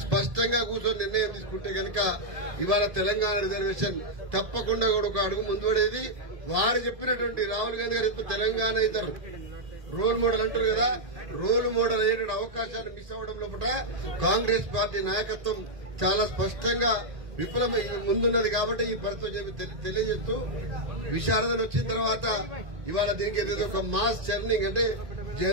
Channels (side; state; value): left; late; 1.8 ms